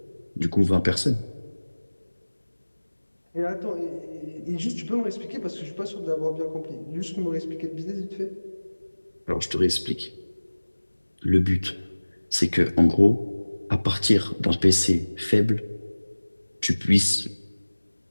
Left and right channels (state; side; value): inverted; both; correlation -1.00